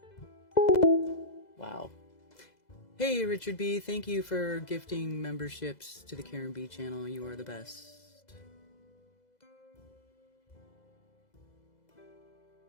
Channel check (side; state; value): right; late; 2.0 ms